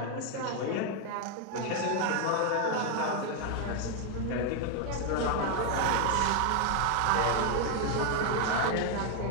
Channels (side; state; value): both; different; correlation 0.01